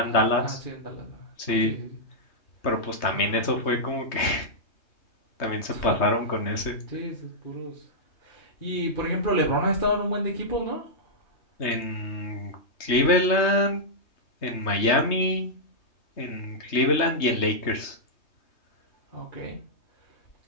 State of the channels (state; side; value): late; right; 3.2 ms